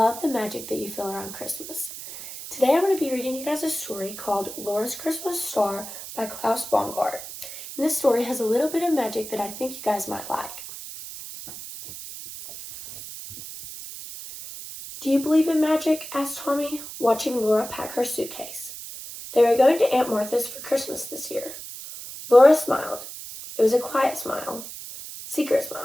the magic that you feel around Christmas. Today I'm going to be reading you guys a story called Laura's Christmas Star by Klaus Baumgart. And this story has a little bit of magic that I think you guys might like. Do you believe in magic? Asked Tommy, watching Laura pack her suitcase. They were going to Aunt Martha's for Christmas this year. Laura smiled. It was a quiet smile. Secret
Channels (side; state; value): right; noise; hiss, 11 dB below the sound